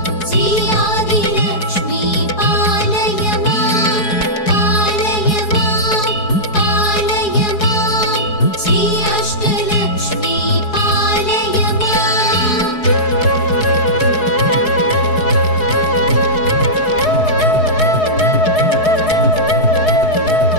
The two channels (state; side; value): late; right; 4.7 ms